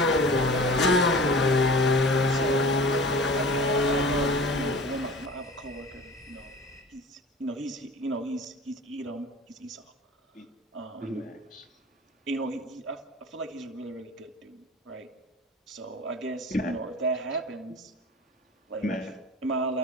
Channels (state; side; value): normal; both; correlation 0.40